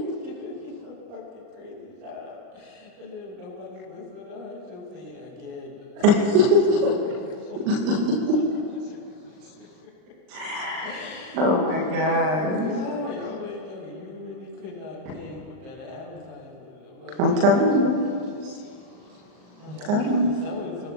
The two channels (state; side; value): late; left; 39 ms